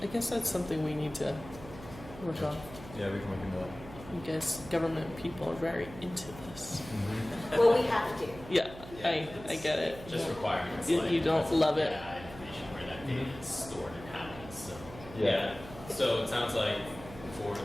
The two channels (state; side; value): noise; right; hum, 15 dB below the sound